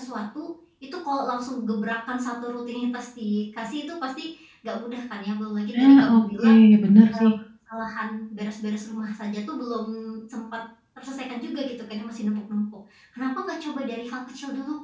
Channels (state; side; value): identical; both; correlation 1.00